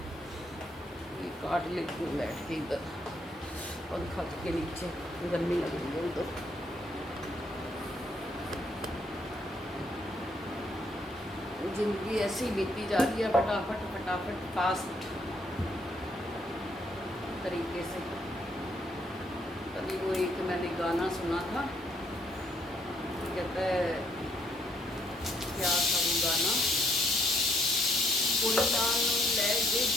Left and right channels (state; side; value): normal; both; correlation 0.71